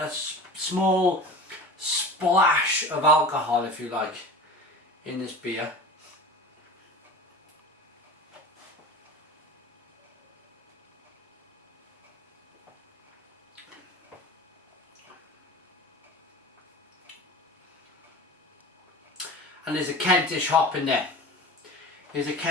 splash of alcohol, if you like, in this beer. And there's a Kentish hop in there. There's a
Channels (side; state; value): both; normal; correlation 0.35